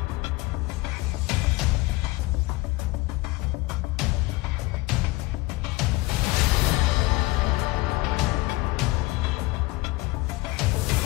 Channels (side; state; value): right; quieter; 20.9 dB